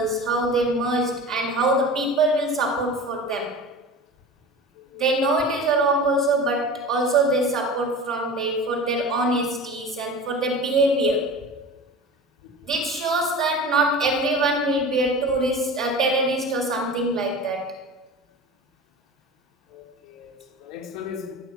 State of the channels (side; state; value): both; normal; correlation 0.34